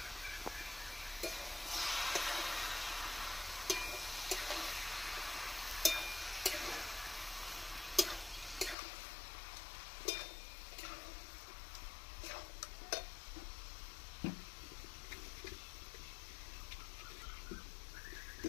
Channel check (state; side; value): drops out; right; at 8.8 s